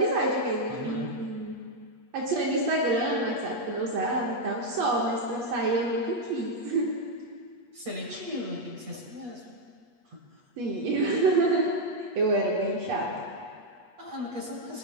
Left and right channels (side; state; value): left; late; 8.3 ms